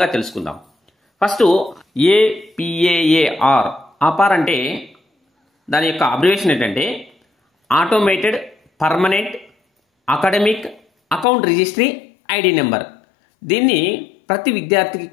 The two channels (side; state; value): right; drops out; at 11.2 s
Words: తెలుసుకుందాం. ఫస్ట్ APAAR ఆపార్ అంటే దాని యొక్క అబ్రివేషన్ ఏంటంటే automated permanent academic account registry ID number. దీన్ని ప్రతి విద్యార్థికి